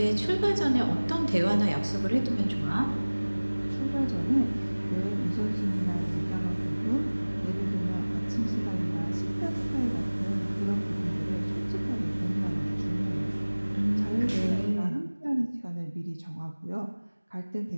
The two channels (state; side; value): inverted; both; correlation -1.00